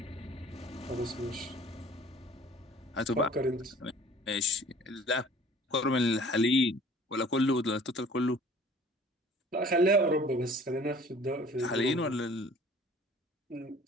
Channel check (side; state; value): both; normal; correlation 0.50